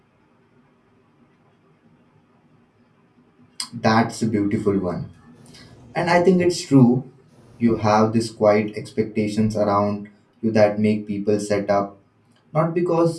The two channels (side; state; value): both; identical; correlation 1.00